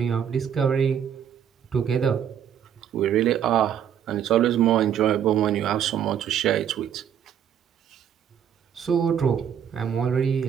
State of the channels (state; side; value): quieter; left; 9.0 dB